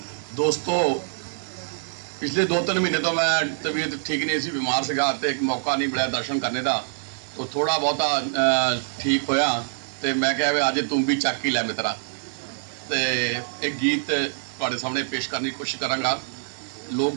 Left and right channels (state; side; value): silent; left; 62 dB below the other